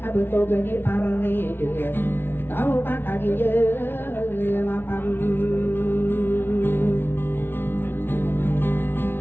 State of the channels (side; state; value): right; late; 0.11 ms